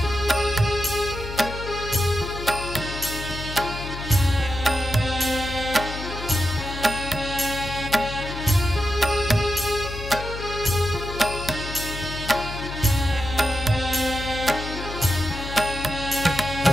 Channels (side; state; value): left; noise; hum, 9 dB below the sound